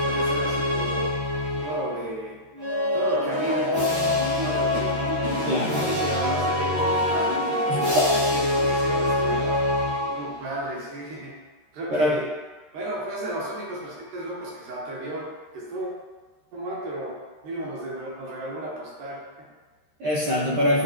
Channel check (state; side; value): late; left; 13 ms